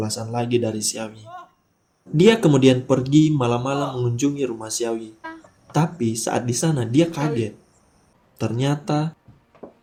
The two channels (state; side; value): identical; both; correlation 1.00